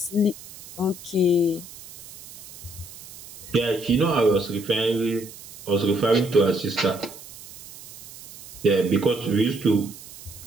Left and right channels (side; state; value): right; noise; hiss, 17 dB below the sound